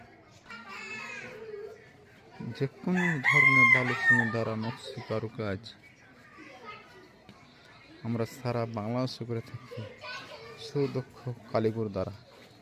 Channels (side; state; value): both; identical; correlation 1.00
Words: যে কোনো ধরনের বালু সিমেন্ট দ্বারা নকশি কাজ আমরা সারা বাংলাদেশে করে থাকি সুদক্ষ কারিগর দ্বারা।